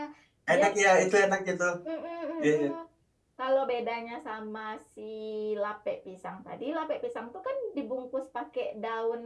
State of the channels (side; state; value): both; identical; correlation 1.00